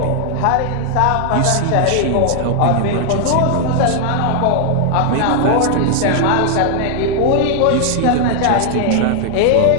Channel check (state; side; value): different; both; correlation 0.00